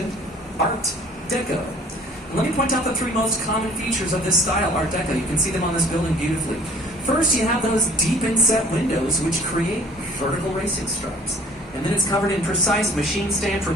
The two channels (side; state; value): both; normal; correlation 0.52